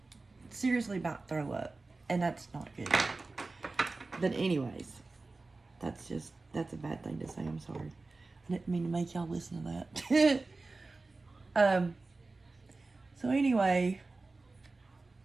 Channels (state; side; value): quieter; left; 3.5 dB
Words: seriously about to throw up, and that's not good. But anyways, that's a bad thing to say. I'm sorry. I didn't mean to make y'all listen to that. So anyway,